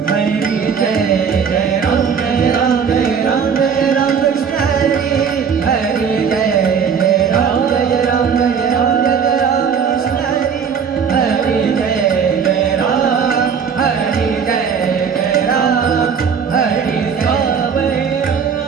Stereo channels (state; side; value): quieter; left; 6.7 dB